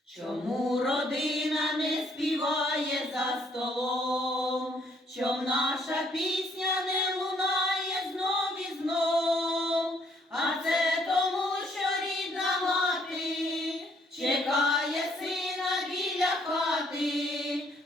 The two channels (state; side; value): normal; both; correlation 0.67